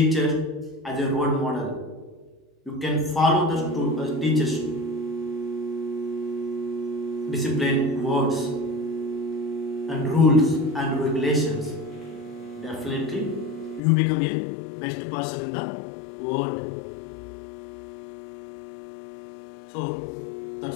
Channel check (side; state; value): right; drops out; at 13.8 s